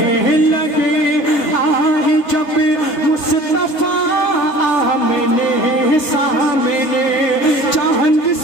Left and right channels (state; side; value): late; right; 3.3 ms